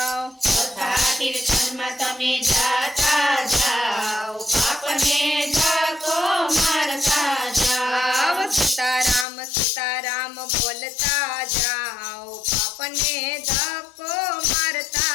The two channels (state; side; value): drops out; right; at 9.2 s